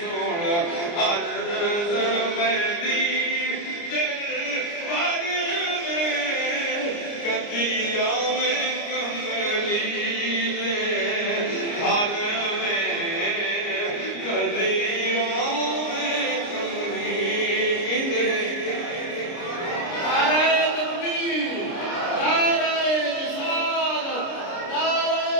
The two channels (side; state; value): right; late; 29 ms